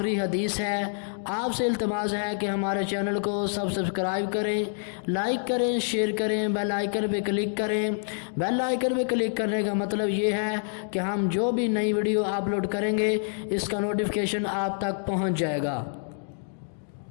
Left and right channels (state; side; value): silent; right; digital silence